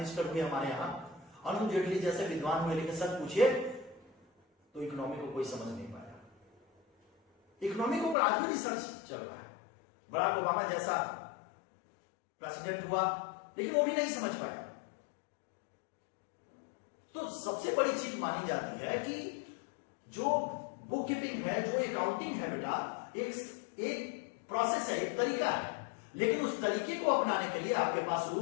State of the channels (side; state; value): right; drops out; at 8.2 s